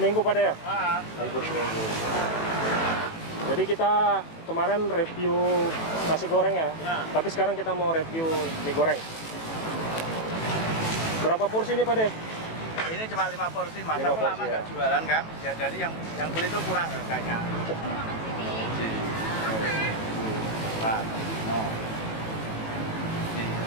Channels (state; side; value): late; right; 18 ms